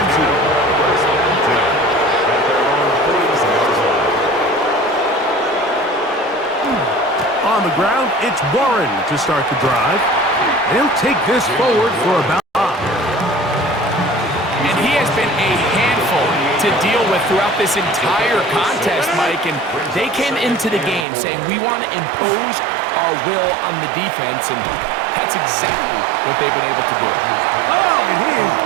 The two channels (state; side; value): drops out; left; at 21.1 s